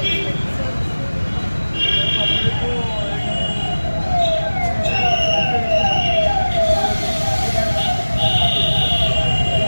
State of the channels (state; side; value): inverted; both; correlation -1.00